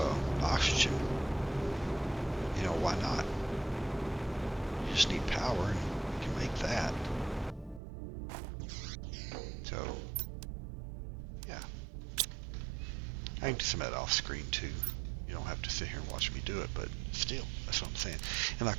oxygen. You know, why not? You just need power, and you can make that. So, yeah. I can do some of that off screen too. You don't have to sit here and watch me do it, but still, that's what I'm saying. And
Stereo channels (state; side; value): drops out; left; at 7.8 s